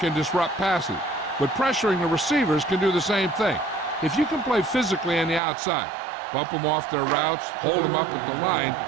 can disrupt passes, but pressuring the receivers can do the same thing. If you can play physically on the outside, bump them off their routes, hold them up at the line,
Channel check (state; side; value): drops out; left; at 5.4 s